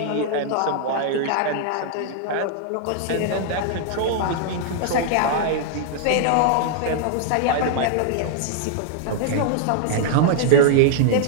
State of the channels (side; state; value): both; different; correlation -0.01